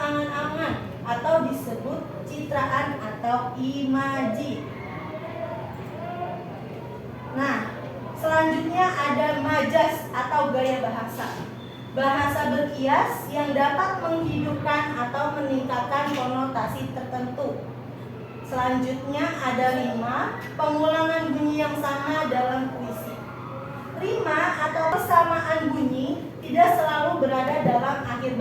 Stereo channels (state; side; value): identical; both; correlation 1.00